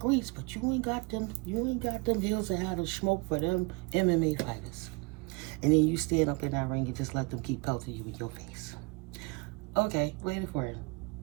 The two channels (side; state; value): left; quieter; 28.6 dB